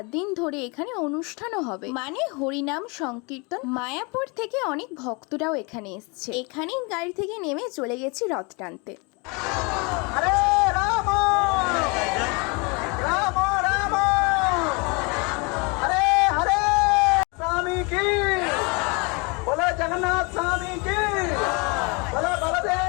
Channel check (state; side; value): quieter; right; 30.0 dB